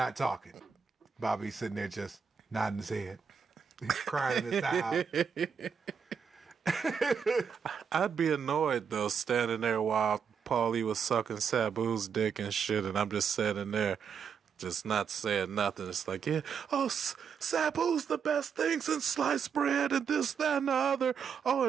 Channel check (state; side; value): quieter; left; 6.7 dB